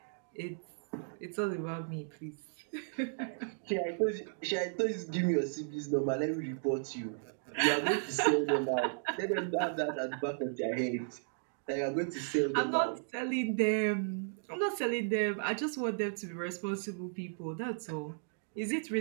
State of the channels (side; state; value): left; silent; digital silence